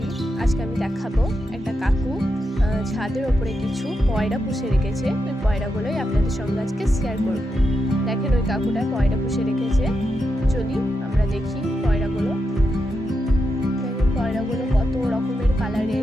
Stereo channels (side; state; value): both; normal; correlation 0.85